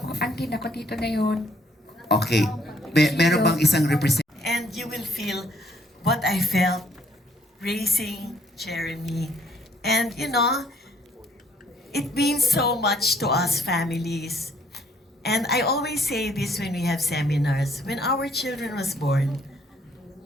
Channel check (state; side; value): normal; both; correlation 0.65